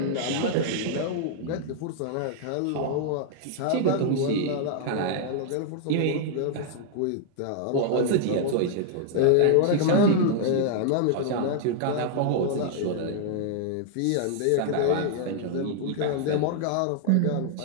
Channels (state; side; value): different; both; correlation -0.01